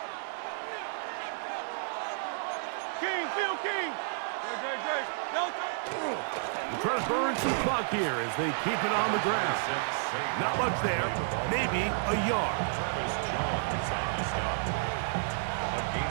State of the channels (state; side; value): silent; left; digital silence